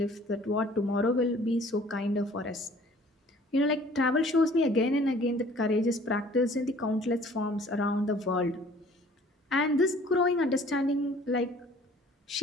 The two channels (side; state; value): both; normal; correlation 0.53